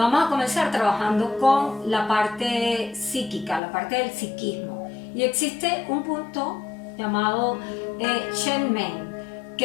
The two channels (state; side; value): drops out; right; at 3.6 s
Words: a comenzar trabajando con la parte psíquica, la parte del psiquismo. Y existe un punto llamado Shen Men,